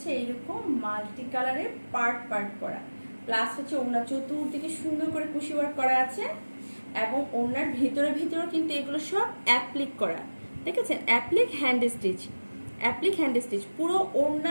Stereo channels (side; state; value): both; inverted; correlation -1.00